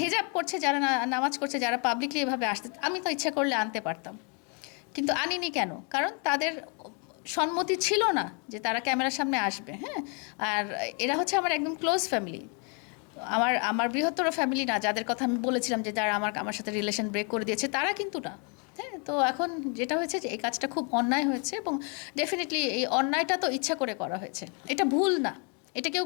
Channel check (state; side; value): quieter; right; 36.4 dB